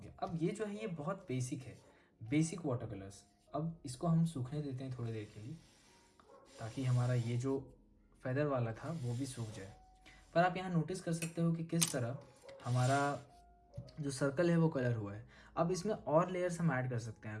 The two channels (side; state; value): both; identical; correlation 1.00